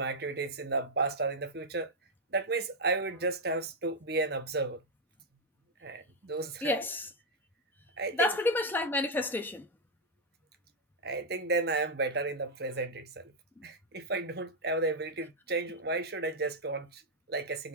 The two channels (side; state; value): both; normal; correlation 0.00